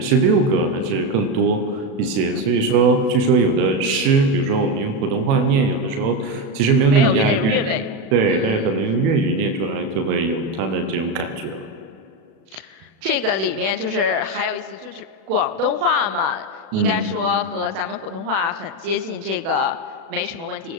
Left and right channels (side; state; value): left; late; 36 ms